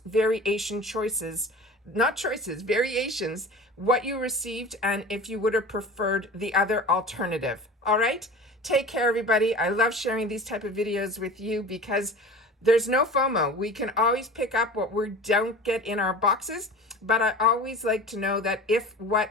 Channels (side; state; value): both; normal; correlation 0.37